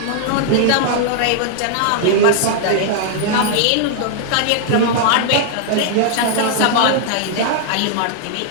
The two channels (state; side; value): different; both; correlation 0.00